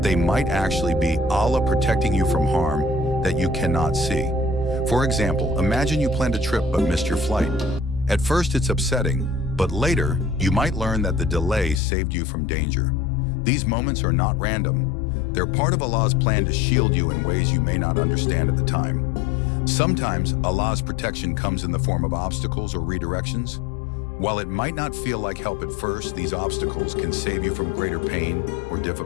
they might actually be Allah protecting you from harm that you cannot see. For example, imagine you planned a trip but missed your flight. At first it's upsetting, but later you might learn that the delay saved you from danger. These moments are not random. They're part of Allah's plan to shield you in ways you may not understand at the time. Sometimes Allah's protection comes in the form of obstacles or redirections. While it might not feel like help at first, these obstacles can save you from greater pain or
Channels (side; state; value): right; drops out; at 11.8 s